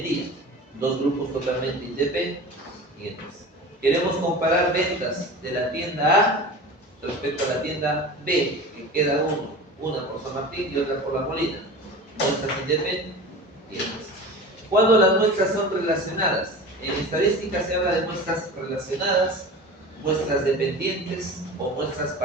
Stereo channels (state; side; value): normal; both; correlation 0.34